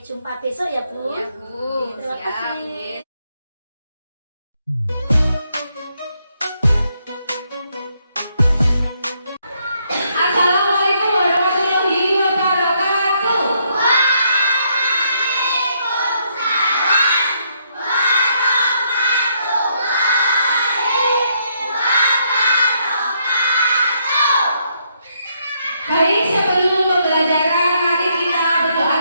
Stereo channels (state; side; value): inverted; both; correlation -0.74